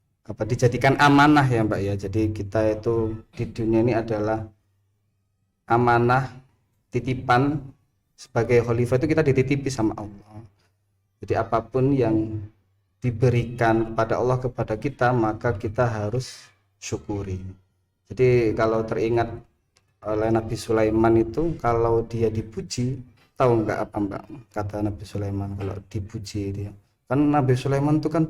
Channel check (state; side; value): identical; both; correlation 1.00